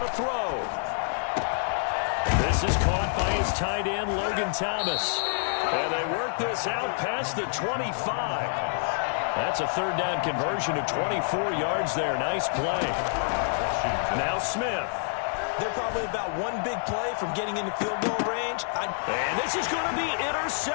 throw. This is caught by his tight end, Logan Thomas. And they work this out past the 25. That's a 3rd down conversion of 24 yards there. Nice play. Now Smith. They're probably about one big play from getting into field goal range. And this is going to be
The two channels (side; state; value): right; silent; digital silence